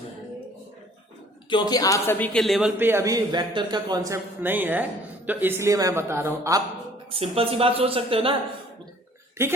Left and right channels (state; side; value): normal; both; correlation 0.55